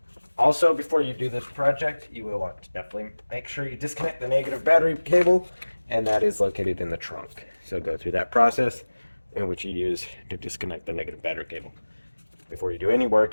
Also, before you do this project, you will want to definitely make sure you disconnect the negative battery cable, and that is located in the trunk. So go through that process in which you use to disconnect the negative battery cable before you do any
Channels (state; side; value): inverted; both; correlation -1.00